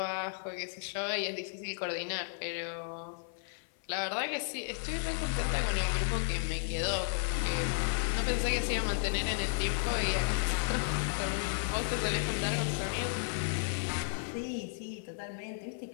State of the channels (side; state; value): right; silent; 55 dB below the other